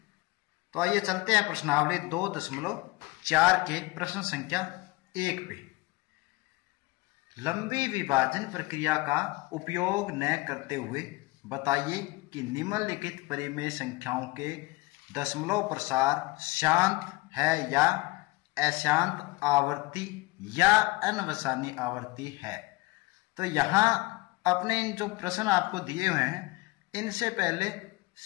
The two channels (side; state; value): right; quieter; 22.5 dB